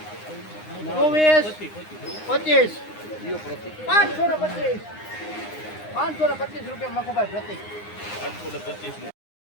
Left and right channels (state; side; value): late; right; 9.7 ms